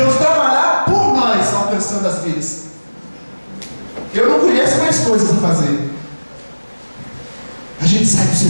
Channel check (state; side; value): inverted; both; correlation -1.00